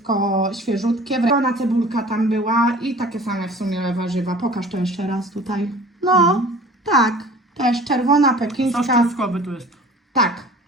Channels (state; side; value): normal; both; correlation 0.45